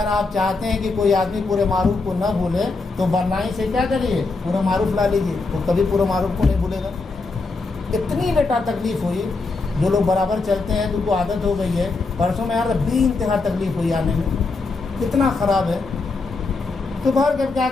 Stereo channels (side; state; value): right; quieter; 3.8 dB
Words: آپ چاہتے ہیں کہ کوئی آدمی پورے معروف کو نہ بھولے تو بلائیں سے کیا کریے پورا معروف لا لیجیے، وہ کبھی پورے معروف کو نہیں بھولے گا۔ اتنی بیٹا تکلیف ہوئی، جو لوگ برابر چلتے ہیں ان کو عادت ہو گئی ہے، پرسوں میں یار بے انتہا تکلیف ہوئی آنے میں، کتنا خراب ہے۔ تو باہر کر کیا